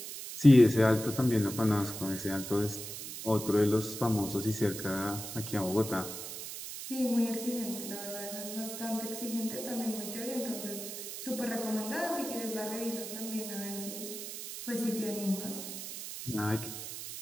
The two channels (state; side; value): noise; right; hiss, 8 dB below the sound